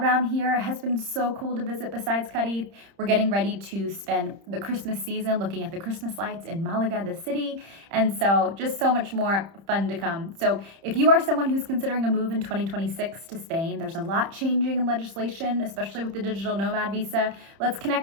here. It has been so cool to visit besides Cadiz. We're getting ready to spend the Christmas season looking at the Christmas lights in Malaga, the city. And so just so much more fun to come. So if you are someone who's considering a move in 2026 to Spain, there's a lot changing in legislation, especially with the digital nomad visa. Let's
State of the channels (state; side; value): late; left; 30 ms